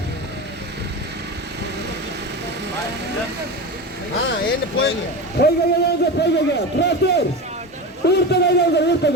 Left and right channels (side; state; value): both; normal; correlation 0.25